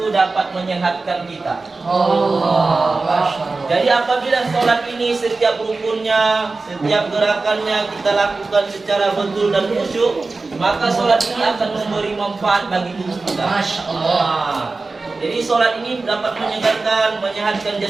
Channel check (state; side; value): quieter; left; 3.7 dB